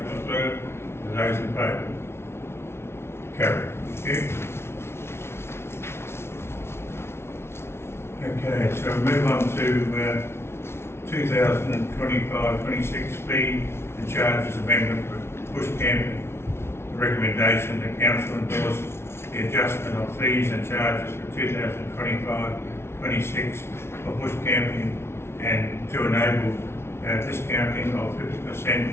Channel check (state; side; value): late; right; 0.12 ms